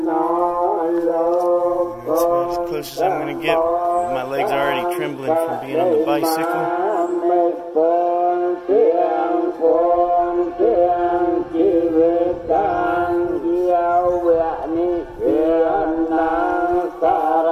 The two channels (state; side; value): identical; both; correlation 1.00